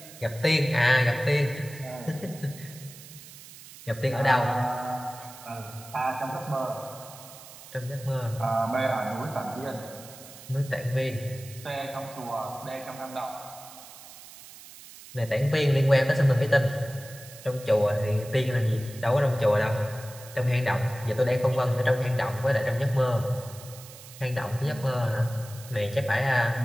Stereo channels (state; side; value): noise; right; hiss, 17 dB below the sound